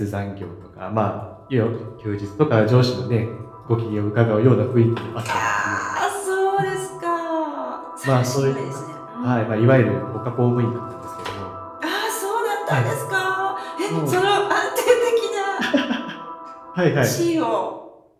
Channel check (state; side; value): identical; both; correlation 1.00